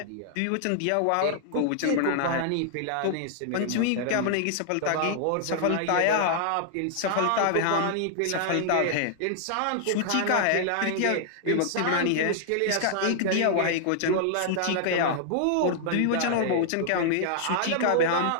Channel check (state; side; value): different; both; correlation -0.01